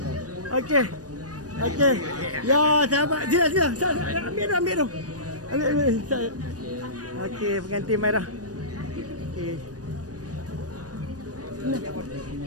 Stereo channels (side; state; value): left; late; 0.68 ms